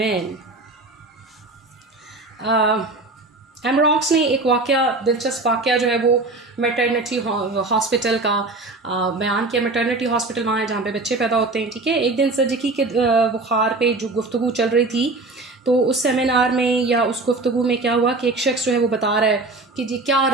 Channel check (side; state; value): left; quieter; 3.2 dB